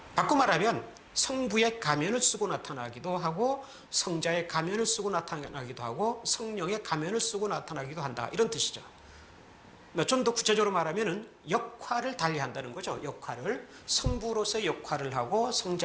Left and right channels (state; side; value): identical; both; correlation 1.00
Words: 바꿔 말하면 성부의 가면을 쓰고 나타나기도 하고 성자의 가면을 쓰고 나타나기도 하고 성령의 가면을 쓰고 나타나기도 한다, 이런 뜻이죠. 좀 더 구체적으로 말하면 역할을 달리한다는 거죠. 역할을 성부로서의 역할을 하고